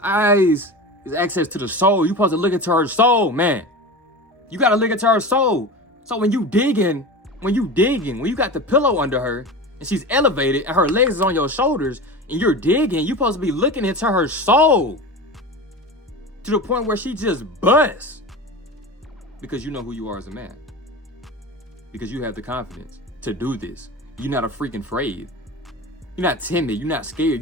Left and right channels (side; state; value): both; normal; correlation 0.29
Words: Eyes is access to the soul. You supposed to look into her soul, man. You got to look into her soul. So when you got the pillow under her and she's elevated and her legs is on your shoulders and you're digging, you supposed to be looking into her soul to the point where she just busts, because you know who you are as a man, because you have the confidence to do this. You're not a freaking afraid. You're not timid. You're not scared.